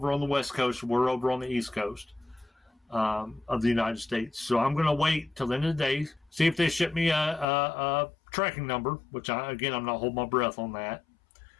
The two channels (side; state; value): right; drops out; at 7.5 s